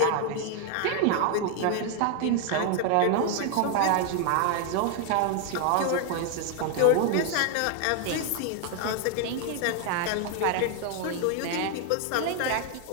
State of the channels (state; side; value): different; both; correlation 0.00